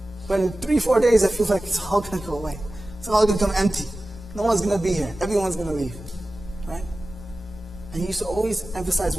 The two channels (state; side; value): normal; both; correlation 0.96